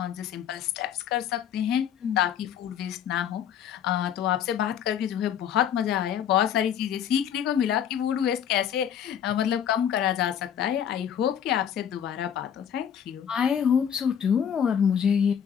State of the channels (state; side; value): quieter; right; 8.9 dB